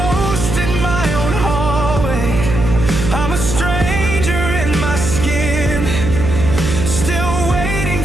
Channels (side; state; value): right; noise; hum, 3 dB below the sound